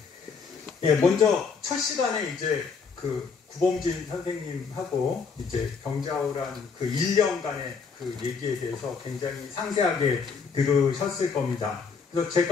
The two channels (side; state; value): right; quieter; 5.4 dB